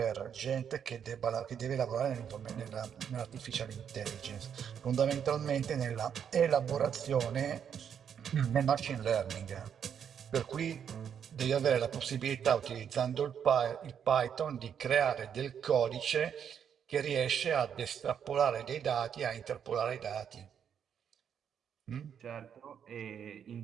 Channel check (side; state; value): left; quieter; 8.1 dB